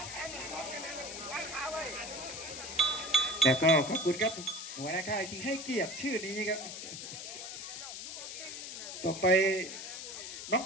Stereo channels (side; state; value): left; noise; hiss, 8 dB below the sound